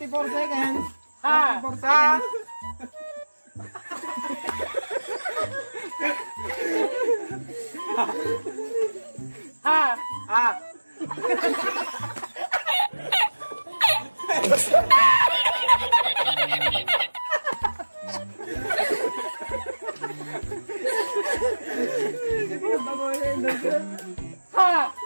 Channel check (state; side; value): inverted; both; correlation -1.00